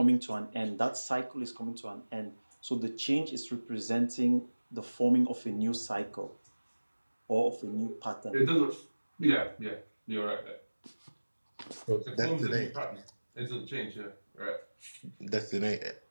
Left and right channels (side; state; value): both; inverted; correlation -1.00